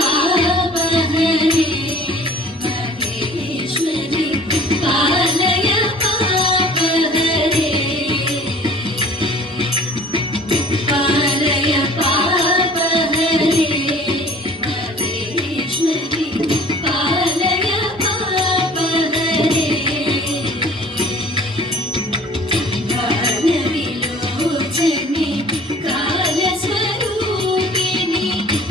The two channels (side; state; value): both; normal; correlation 0.48